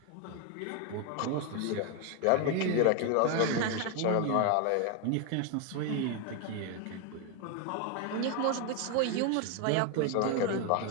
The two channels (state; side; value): different; both; correlation 0.01